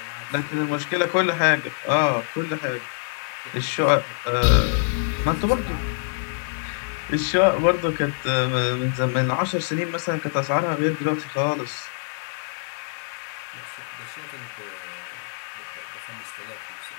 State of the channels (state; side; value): silent; right; digital silence